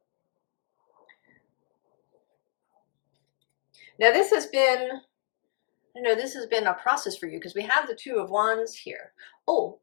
Now this has been, a process for you because we have the Two of Wands here. Oh,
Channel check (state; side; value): silent; right; 58 dB below the other